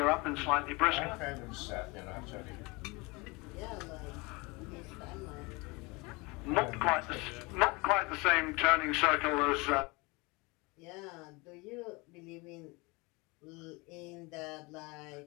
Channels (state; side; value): quieter; right; 26.2 dB